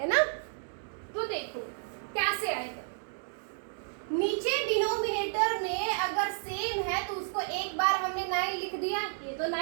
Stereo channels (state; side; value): silent; left; 57 dB below the other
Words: ना? तो देखो कैसे आएगा। नीचे डिनोमिनेटर में अगर सेम है तो उसको एक बार हमने 9 लिख दिया, ये तो